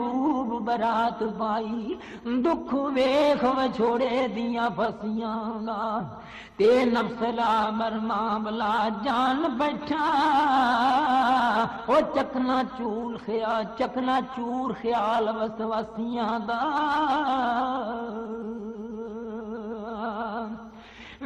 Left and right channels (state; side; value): identical; both; correlation 1.00